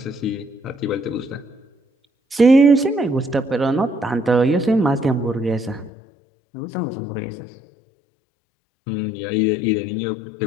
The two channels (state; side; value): drops out; right; at 5.9 s